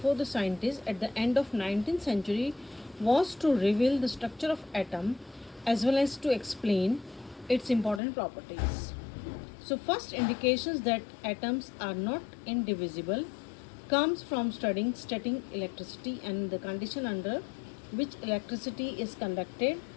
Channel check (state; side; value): drops out; right; at 8.0 s